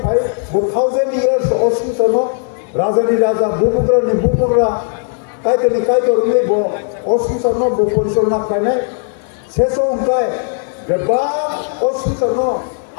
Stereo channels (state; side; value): silent; right; 57 dB below the other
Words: ভাই 1000 years অসুতনো রাজানি রাজা বুপুকরা কাইতনি কাইতরুনি ব অসুতনো ব পরিচালনা খাইনে শেষ অঙ্কায় বেবা অসুতনো